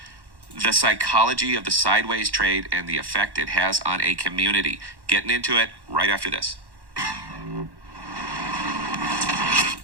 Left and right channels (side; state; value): left; late; 1.1 ms